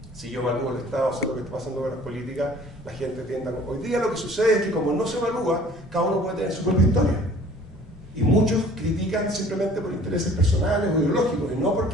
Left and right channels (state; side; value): normal; both; correlation 0.51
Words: Si yo evalúo el Estado, sé lo que está pasando con las políticas, la gente tiende a... Hoy día lo que sucede es que como no se evalúa, cada uno puede tener su propia historia. Y muchos critican simplemente por intereses personales o ideológicos, y no